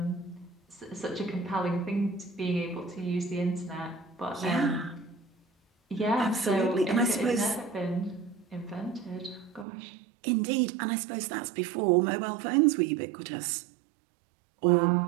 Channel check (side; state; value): left; drops out; at 9.7 s